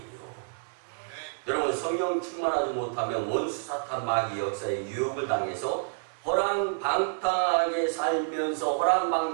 여러분, 성령 충만하지 못하면 원수 사탄 마귀 역사에 유혹을 당해서 허랑방탕하게 살면서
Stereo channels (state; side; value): silent; left; digital silence